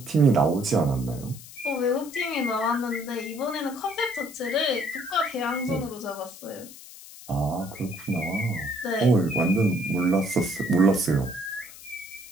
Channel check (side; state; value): left; noise; hiss, 17 dB below the sound